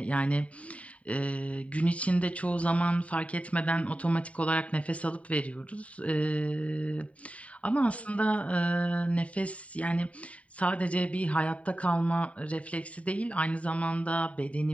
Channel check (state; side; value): late; right; 0.066 ms